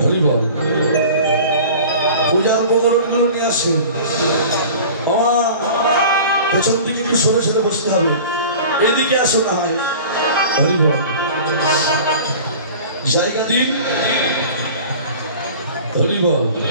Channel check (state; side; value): inverted; both; correlation -0.40